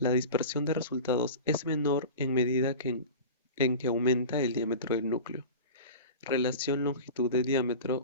dispersión de resultados es menor en medida en que aumenta el diámetro del núcleo. Relación longitud de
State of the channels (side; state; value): both; inverted; correlation -0.32